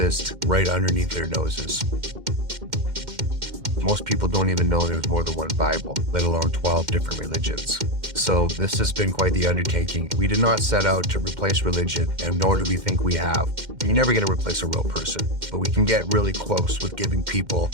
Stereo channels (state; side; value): late; left; 2.1 ms